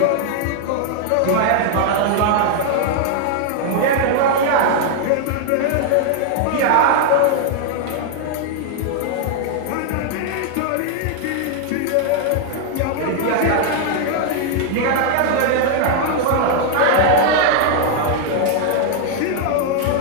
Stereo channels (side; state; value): both; different; correlation 0.00